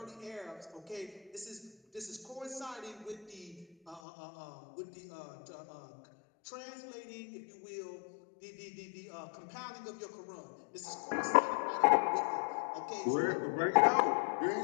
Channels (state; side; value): drops out; right; at 4.0 s